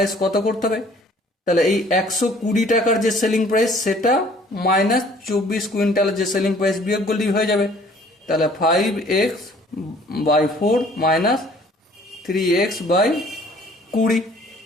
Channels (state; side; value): normal; both; correlation 0.55